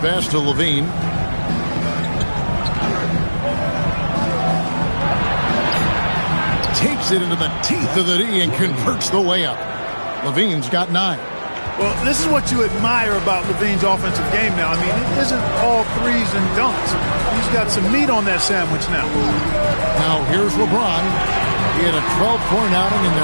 to Levine. Takes it into the teeth of the D and converts the layup. Levine's got 9. Well, this is what you admire about Levine's offensive game now. I mean, it isn't all threes and dunks. He's got some meat on that sandwich now. Now here's LeBron. He had a 12-point outing in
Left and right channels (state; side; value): inverted; both; correlation -1.00